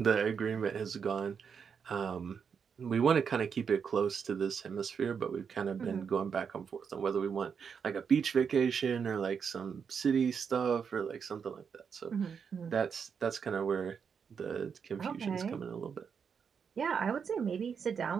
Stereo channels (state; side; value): quieter; left; 6.6 dB